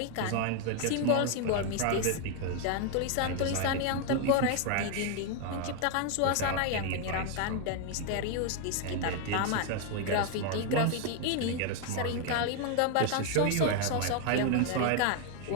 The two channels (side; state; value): both; different; correlation 0.01